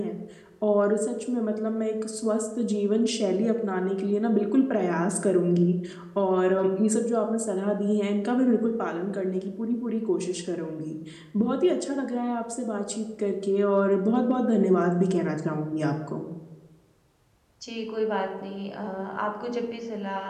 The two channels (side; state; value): both; identical; correlation 1.00